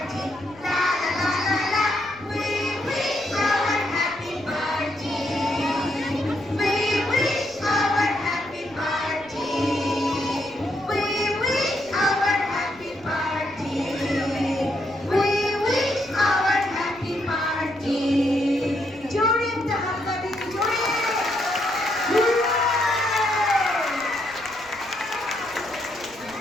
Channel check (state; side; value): noise; right; rumble, 24 dB below the sound